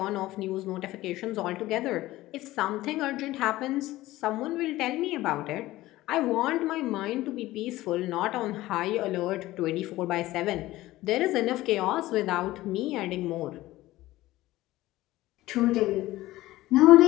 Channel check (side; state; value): right; quieter; 17.0 dB